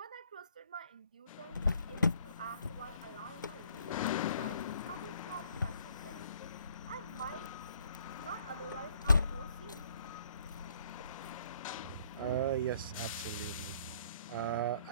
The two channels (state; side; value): inverted; both; correlation -0.63